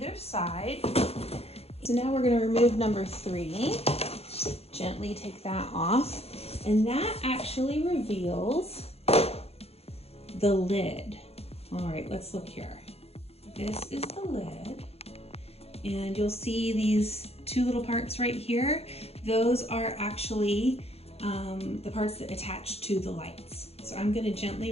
side. So now we're gonna remove number 3. Gently take that off. And that actually reveals the lid. All right, let's look here. This is the lid. And you'll see these 2 little parts right here. Those are actually the parts that attach to the lights. So I'm gonna gently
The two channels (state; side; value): late; right; 0.29 ms